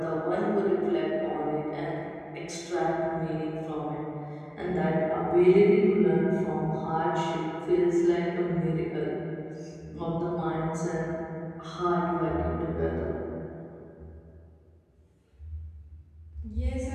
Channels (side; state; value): both; identical; correlation 1.00